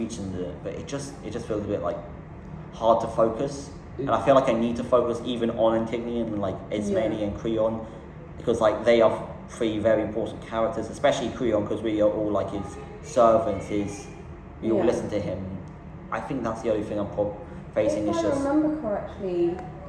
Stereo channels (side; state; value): both; identical; correlation 1.00